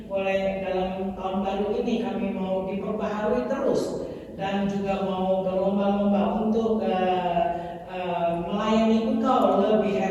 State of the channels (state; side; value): identical; both; correlation 1.00